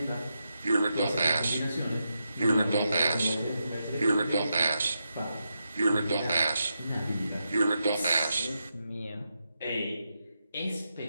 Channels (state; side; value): inverted; both; correlation -0.86